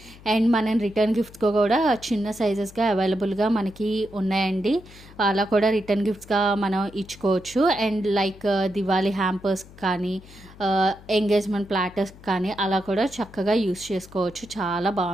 అండ్ మనం రిటర్న్ గిఫ్ట్స్గా కూడా చిన్న సైజెస్గా అవైలబుల్గా మనకి ఉన్నాయండి. అలా కూడా రిటర్న్ గిఫ్ట్స్గా మనం ఇచ్చుకోవచ్చు. అండ్ లైక్ దివాళీ హ్యాంపర్స్ కానీ ఎంగేజ్మెంట్ ప్లాటర్స్ కానీ అలా కూడా చక్కగా యూస్ చేసుకోవచ్చు, చాలా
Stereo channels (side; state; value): left; noise; hum, 21 dB below the sound